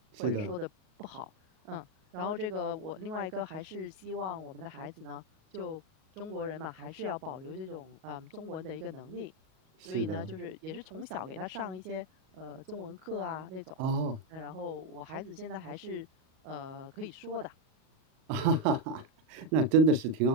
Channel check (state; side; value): late; left; 38 ms